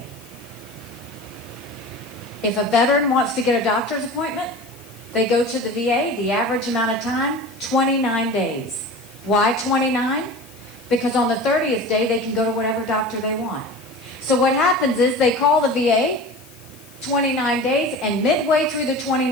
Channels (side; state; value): left; noise; hiss, 24 dB below the sound